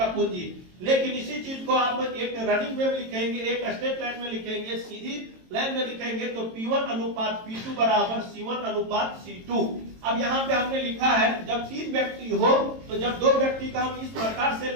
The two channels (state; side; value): late; left; 22 ms